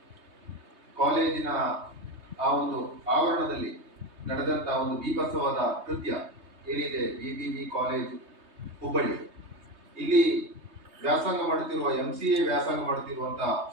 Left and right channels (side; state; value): left; late; 3.2 ms